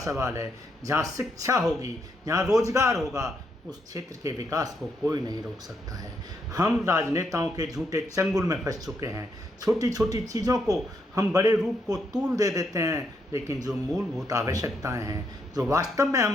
है। जहाँ शिक्षा होगी, जहाँ रोजगार होगा, उस क्षेत्र के विकास को कोई नहीं रोक सकता है। हम राजनेताओं के झूठे चंगुल में फंस चुके हैं। छोटी छोटी चीज़ों को हम बड़े रूप को तूल दे देते हैं, लेकिन जो मूलभूत आवश्यकताएं हैं, जो वास्तव में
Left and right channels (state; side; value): normal; both; correlation 0.77